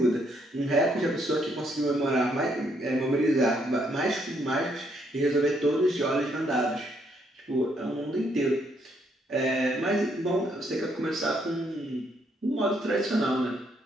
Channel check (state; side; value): normal; both; correlation 0.72